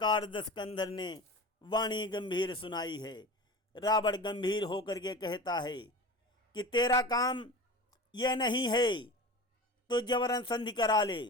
दशकंधर ने वाणी गंभीर सुनाई है। रावण गंभीर होकर के कहता है कि तेरा काम यह नहीं है तो जबरन संधि करा ले,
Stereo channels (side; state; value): both; normal; correlation 0.33